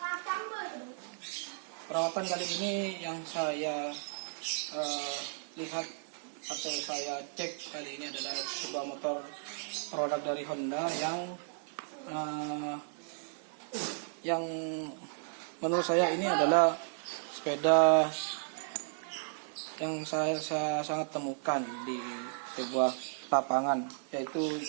Perawatan kali ini yang saya lihat atau saya cek kali ini adalah sebuah motor produk dari Honda yang menurut saya ini adalah sepeda yang saya sangat temukan di sebuah lapangan, yaitu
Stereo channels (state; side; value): silent; left; digital silence